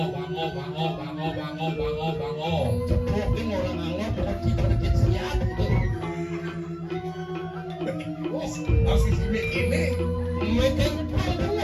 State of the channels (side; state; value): both; identical; correlation 1.00